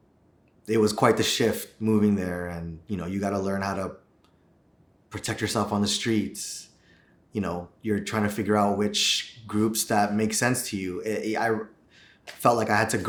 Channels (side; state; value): both; identical; correlation 1.00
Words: It was quite the shift moving there, and you got to learn how to protect yourself on the streets. You're trying to figure out which groups that make sense to you. I felt like I had to